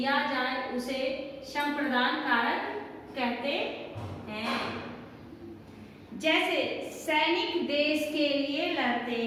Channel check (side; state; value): both; identical; correlation 1.00